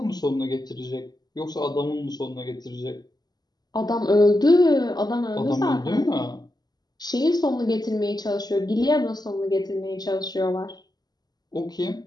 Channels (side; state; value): right; late; 0.20 ms